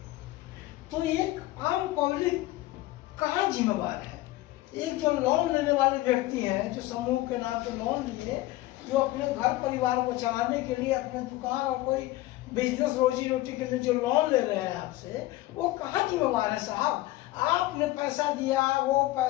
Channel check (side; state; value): right; quieter; 17.5 dB